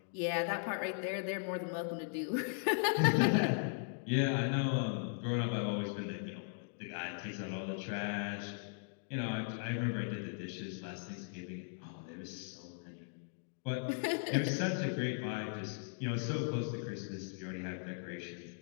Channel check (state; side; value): silent; right; digital silence